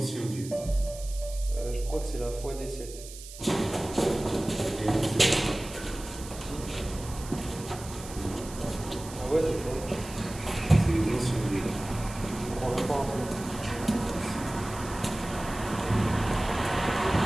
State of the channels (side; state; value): right; noise; hiss, 15 dB below the sound